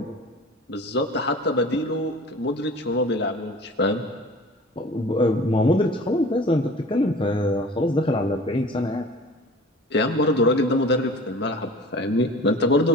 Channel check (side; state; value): both; normal; correlation 0.42